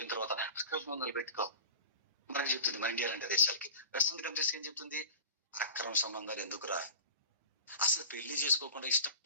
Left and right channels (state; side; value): inverted; both; correlation -0.34